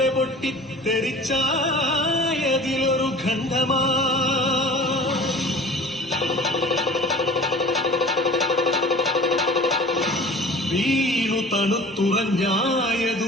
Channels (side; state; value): both; normal; correlation 0.43